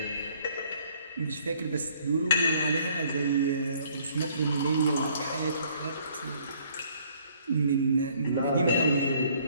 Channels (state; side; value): inverted; both; correlation -0.62